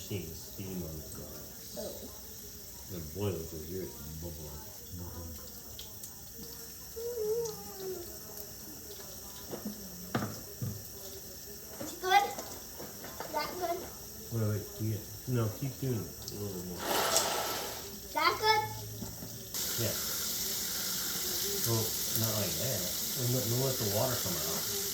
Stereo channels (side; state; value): both; identical; correlation 1.00